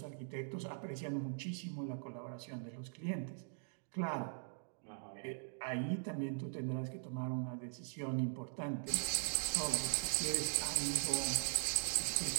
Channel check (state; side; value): silent; left; digital silence